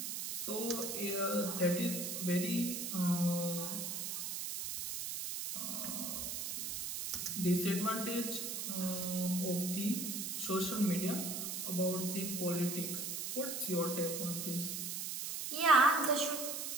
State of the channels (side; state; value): right; noise; hiss, 4 dB below the sound